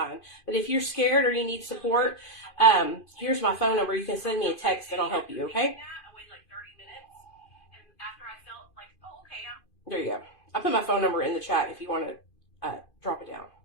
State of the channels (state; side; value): late; right; 2.5 ms